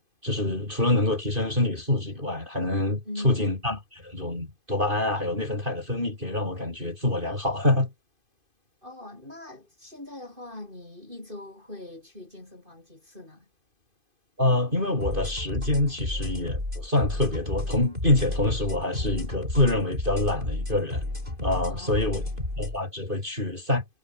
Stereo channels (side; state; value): left; late; 2.5 ms